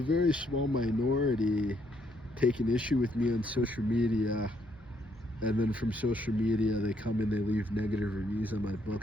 very small minority take an issue with me on social media, and then from social media they come and they leave negative reviews on my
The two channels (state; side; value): normal; both; correlation 0.72